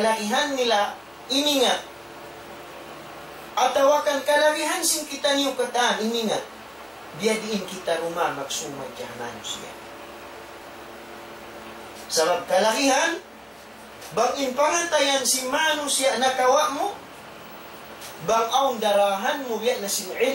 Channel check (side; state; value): both; identical; correlation 1.00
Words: nila iningat atawakan kalahihan sin kita niyo kataan iningat dia diin kita rumah magsumad kaya manusia sabab kalahihan bang inpangantayan si manusia nakawa mo bang aung darahan mo biya na sin